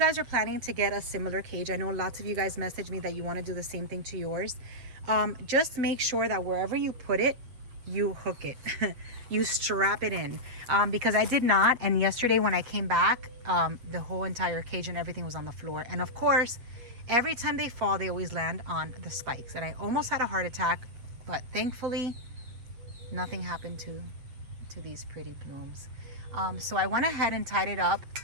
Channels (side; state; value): left; late; 8.3 ms